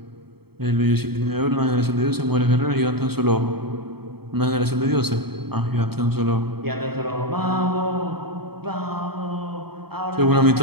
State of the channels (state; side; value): late; left; 0.96 ms